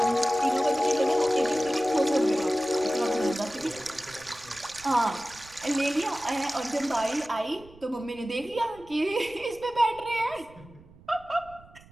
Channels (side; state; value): right; noise; rumble, 23 dB below the sound